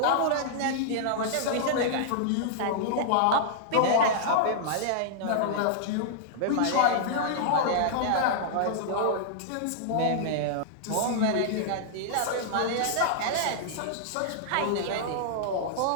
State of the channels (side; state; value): both; different; correlation -0.02